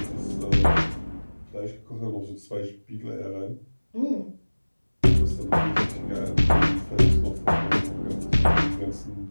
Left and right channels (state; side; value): inverted; both; correlation -1.00